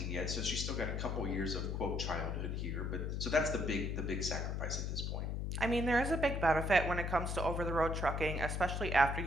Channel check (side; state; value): left; noise; hum, 2 dB below the sound